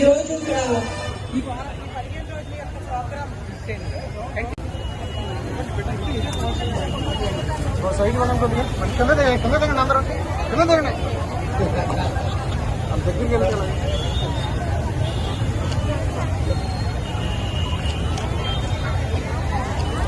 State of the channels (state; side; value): identical; both; correlation 1.00